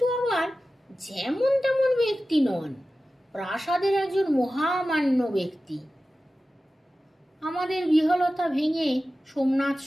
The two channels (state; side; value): normal; both; correlation 0.95